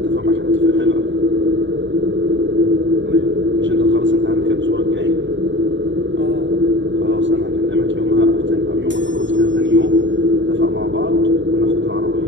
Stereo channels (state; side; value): late; left; 0.54 ms